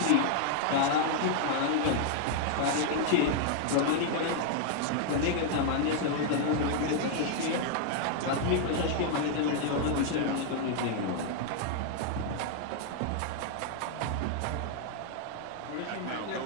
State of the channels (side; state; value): both; different; correlation 0.00